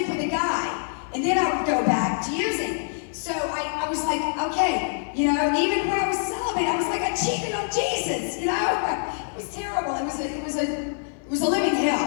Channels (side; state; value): right; silent; 55 dB below the other